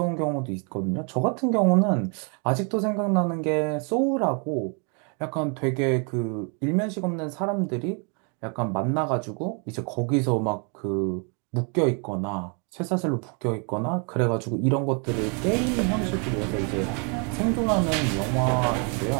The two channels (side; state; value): left; quieter; 37.0 dB